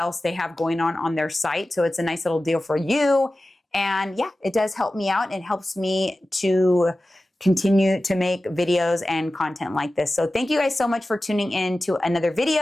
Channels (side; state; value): both; normal; correlation 0.95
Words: they have going on their site. So it's a nice little deal for you. And yeah, it does help me out. It helps me to continue to make videos and content like this. So thank you guys so much for tuning in to another